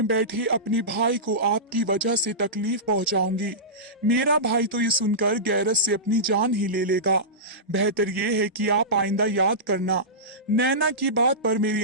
बैठे अपने भाई को आपकी वजह से तकलीफ पहुँचाऊंगी। मेरा भाई तो ये सुनकर गैरत से अपनी जान ही ले लेगा। बेहतर ये है कि आप आइंदा याद करना। नैना की बात पर मेरी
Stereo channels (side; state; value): both; normal; correlation -0.17